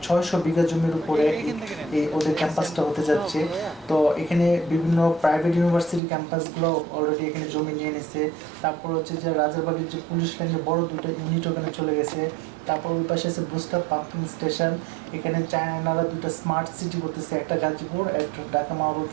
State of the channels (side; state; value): left; drops out; at 6.0 s